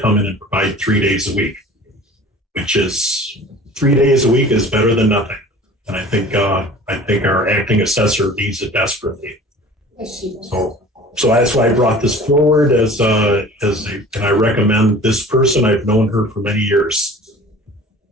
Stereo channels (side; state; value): both; normal; correlation 0.44